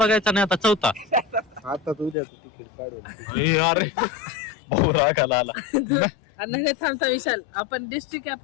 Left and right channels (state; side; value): drops out; right; at 2.1 s